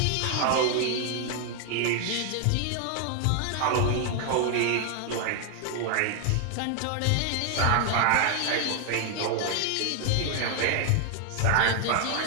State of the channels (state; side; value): different; both; correlation 0.00